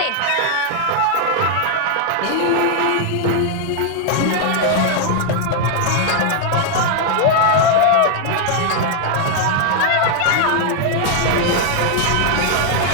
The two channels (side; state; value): both; different; correlation 0.00